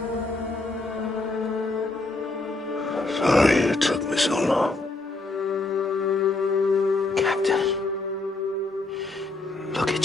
Sorry it took me so long. Captain, look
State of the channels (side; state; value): right; quieter; 3.2 dB